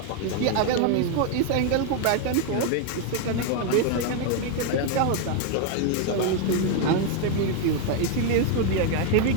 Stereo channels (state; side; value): different; both; correlation 0.01